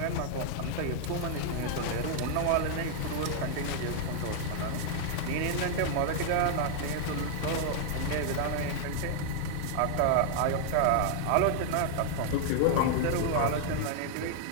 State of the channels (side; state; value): both; different; correlation -0.01